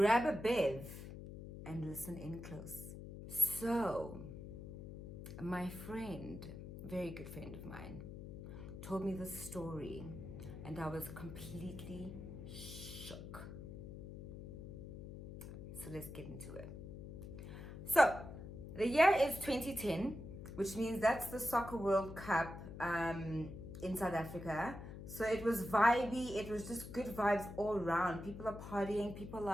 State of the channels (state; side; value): noise; left; hum, 10 dB below the sound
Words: a bev, and listen in close. So my friend, very good friend of mine, told me this story and I was completely shook. So let's get into it. So the year is 2010, which means that's the Soccer World Cup in South Africa. So it was vibey, it was just good vibes all around. People are partying, people